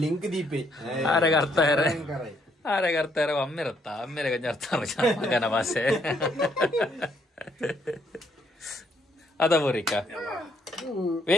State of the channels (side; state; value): both; normal; correlation 0.71